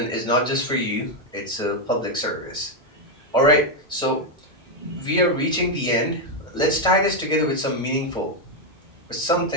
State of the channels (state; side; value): normal; both; correlation 0.04